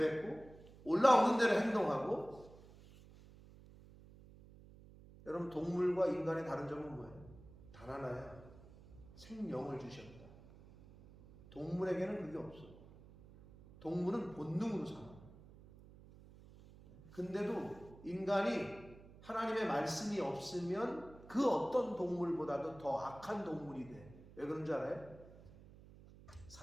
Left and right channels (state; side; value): noise; right; hum, 20 dB below the sound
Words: 올라오는 대로 행동하고. 여러분, 동물과 인간의 다른 점은 뭐예요? 단 하나야. 생명을 주셨다. 동물에게는 그게 없어. 동물은 본능으로 살아. 근데도 인간이 하나님의 말씀이 없으면 그 어떤 동물보다도 더 악한 동물이 돼. 왜 그런 줄 알아요?